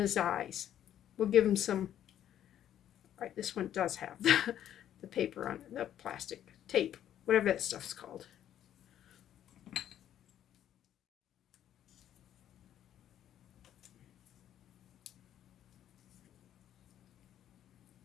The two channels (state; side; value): quieter; right; 10.9 dB